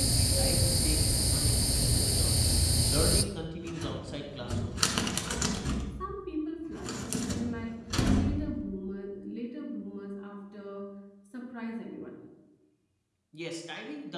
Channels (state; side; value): identical; both; correlation 1.00